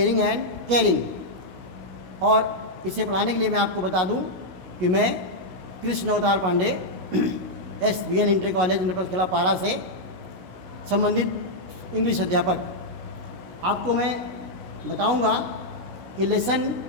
एंड केयरिंग। और इसे पढ़ाने के लिए मैं आपको बता दूँ कि मैं कृष्ण अवतार पांडे SBN इंटर कॉलेज इंटरकला पारा से संबंधित इंग्लिश अध्यापक। आपको मैं बताऊंगा कि लेसन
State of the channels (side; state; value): left; late; 16 ms